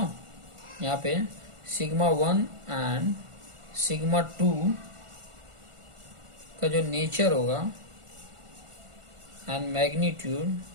यहाँ पे सिग्मा 1 एंड सिग्मा 2 का जो नेचर होगा एंड मैग्नीट्यूड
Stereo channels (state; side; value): late; left; 1.4 ms